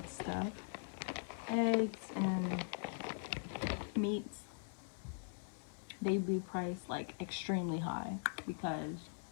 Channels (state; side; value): silent; right; 50 dB below the other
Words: stuff, eggs and meats, they'd be priced like extremely high because